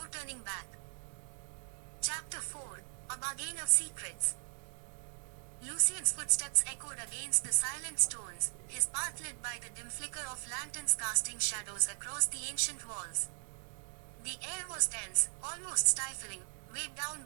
turning back. Chapter 4, A Bargain of Secrets. Lucian's footsteps echoed against the silent stones, his path lit by the dim flicker of lanterns casting shadows across the ancient walls. The air was dense, almost stifling, weighed down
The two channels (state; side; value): silent; left; 53 dB below the other